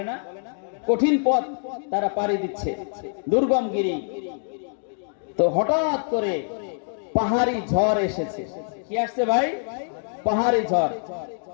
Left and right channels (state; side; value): silent; right; digital silence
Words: না, কঠিন পথ তারা পাড়ি দিচ্ছে, দুর্গম গিরি। তো হঠাৎ করে পাহাড়ি ঝড় এসেছে। কি আসছে ভাই? পাহাড়ি ঝড়।